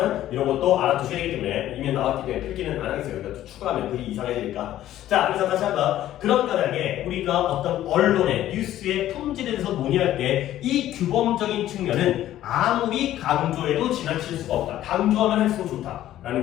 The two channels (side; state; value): right; quieter; 13.1 dB